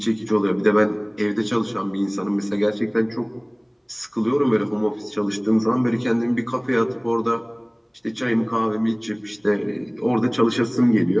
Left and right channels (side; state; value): both; identical; correlation 1.00